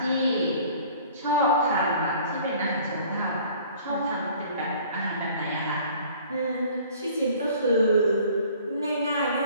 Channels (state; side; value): inverted; both; correlation -0.51